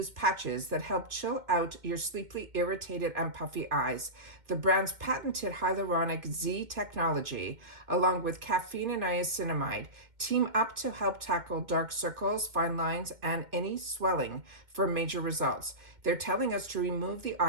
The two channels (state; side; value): late; left; 2.1 ms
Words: patches that help chill out your sleepily irritated and puffy eyes. The brand's patented hyaluronic Z technology, along with caffeine and niacinamide, team up to help tackle dark circles, fine lines, and any swelling for major results. They're telling us to remove the